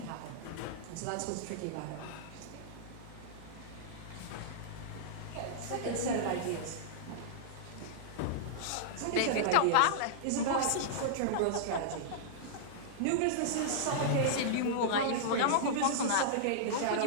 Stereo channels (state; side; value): different; both; correlation -0.02